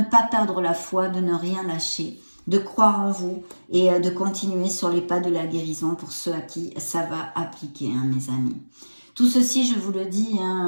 pas perdre la foi, de ne rien lâcher, de croire en vous et de continuer sur les pas de la guérison pour ceux à qui ça va appliquer, hein, mes amis. Tout ceci, je vous le dis,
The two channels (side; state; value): both; inverted; correlation -1.00